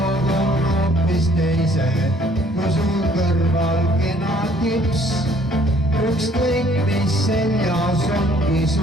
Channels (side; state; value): both; normal; correlation 0.60